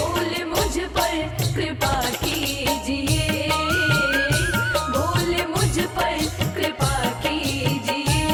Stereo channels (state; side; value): identical; both; correlation 1.00